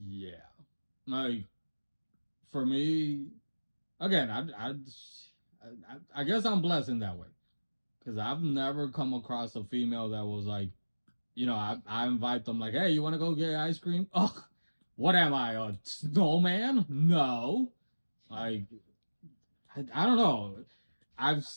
Yeah, like for me, again, I guess I'm blessed in that way because I've never come across a female that was like, I invite them like, hey, you want to go get ice cream? Ugh, what am I, a snowman? No, like I don't know. I've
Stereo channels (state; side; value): inverted; both; correlation -1.00